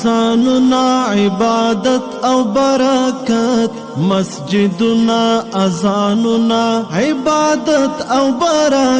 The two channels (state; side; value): identical; both; correlation 1.00